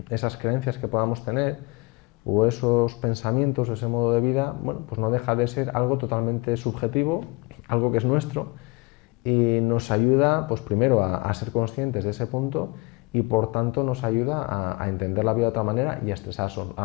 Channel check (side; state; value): right; quieter; 25.7 dB